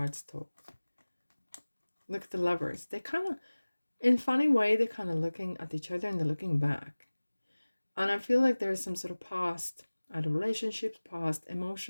talk. Look at the Lovers. They kind of, in a funny way, they're kind of looking at each other and they're looking back. And I feel like there's some sort of past, either relationships, past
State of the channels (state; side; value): inverted; both; correlation -1.00